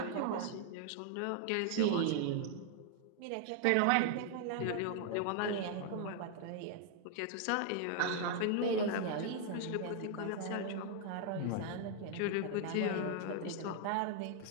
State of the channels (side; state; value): both; different; correlation 0.00